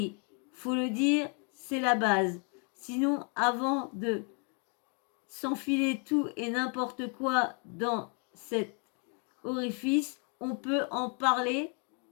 faut le dire, c'est la base. Sinon, avant de s'enfiler tout et n'importe quoi dans cet orifice, on peut en parler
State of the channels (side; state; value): right; quieter; 38.4 dB